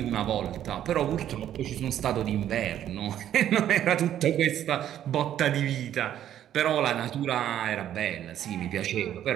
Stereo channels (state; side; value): quieter; left; 11.1 dB